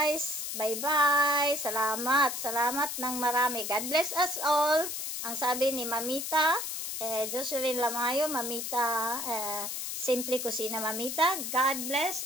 Bye-bye. Salamat. Salamat ng marami. God bless us all. Ang sabi ni Mamita, Jocelyn Lamayo, Mamita, Simple Kusina Mamita, God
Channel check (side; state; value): left; noise; hiss, 4 dB below the sound